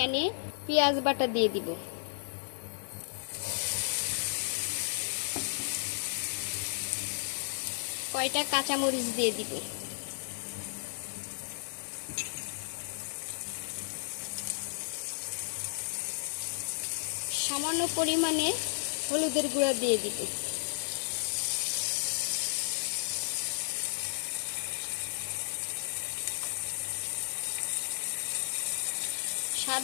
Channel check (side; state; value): right; silent; 55 dB below the other